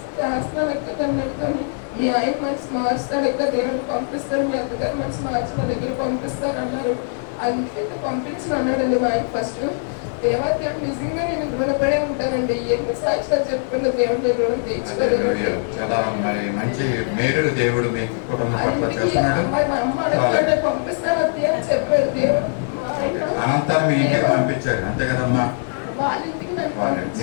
ఎక్కడ అన్నట్టుకొని మీ ఆయన మనసు మార్చుతాడు, ఎక్కడ దేవుడిని పంపిస్తాడు, మీ అత్తగారు మనసు మార్చి నా దగ్గర పంపిస్తారు అన్నారు. అందుకైతే పంపించిన అన్నాడండి మా ఆయన ఫస్ట్. దేవాదేవుడు నిజంగా నేను రుణపడే ఉంటానండి. ఎన్ని సాక్షాలు చెప్పుకున్న దేవుడు రుణం తీర్చుకోలేదు. మంచి మేలు దేవుడు మీకు కుటుంబం పట్ల చేస్తున్నాడు. మా అమ్మ అడగండి పంపిస్తాను అత్తే అని చెప్పాడు దేవుడు. అనంతరం మీ ఇంటికి పంపించాడు అంతే కదమ్మా? వాళ్ళ ఇంటికి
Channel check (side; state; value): right; silent; 62 dB below the other